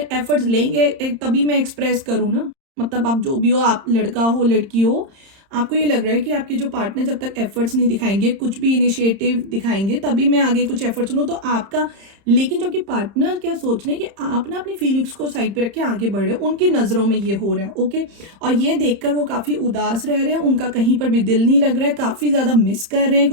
एफर्ट्स लेंगे तभी मैं एक्सप्रेस करूँ ना। मतलब आप जो भी हो, आप लड़का हो लड़की हो, आपको ये लग रहा है कि आपके जो पार्टनर जब तक एफर्ट्स नहीं दिखाएंगे, कुछ भी इनिशिएटिव दिखाएंगे, तभी मैं आगे कुछ एफर्ट्स लूँ तो आपका। लेकिन जो कि पार्टनर क्या सोच रहे हैं कि आप ना अपनी फीलिंग्स को साइड पे रख के आगे बढ़ रहे हो, उनकी नजरों में ये हो रहा है। ओके, और ये देखकर वो काफी उदास रह रहे हैं, उनका कहीं पर भी दिल नहीं लग रहा है, काफी ज्यादा मिस कर रहे हैं,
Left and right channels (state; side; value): late; left; 30 ms